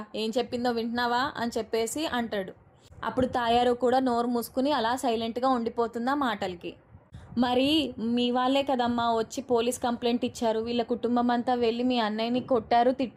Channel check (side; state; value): both; identical; correlation 1.00